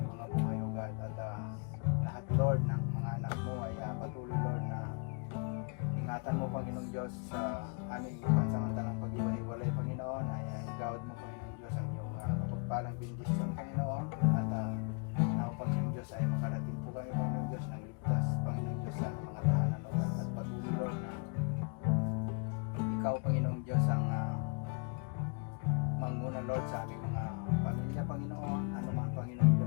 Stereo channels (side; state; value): right; quieter; 38.0 dB